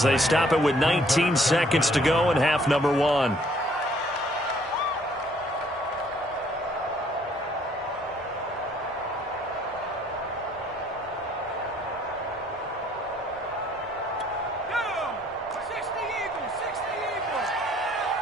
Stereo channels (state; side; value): normal; both; correlation 0.62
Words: they stop it with 19 seconds to go in half number 1.